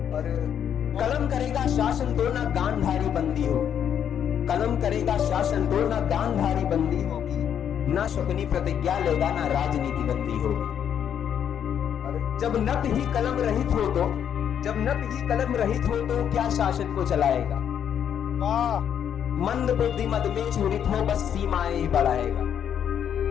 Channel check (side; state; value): right; quieter; 8.9 dB